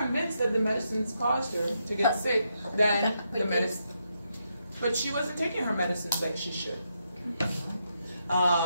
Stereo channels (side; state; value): both; inverted; correlation -0.81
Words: that the medicines caused her to get sick than the medicine. But she wasn't taking her medicines like she should.